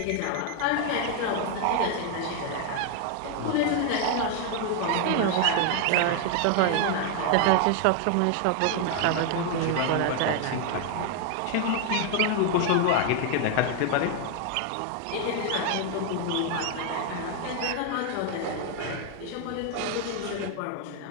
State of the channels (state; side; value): different; both; correlation 0.00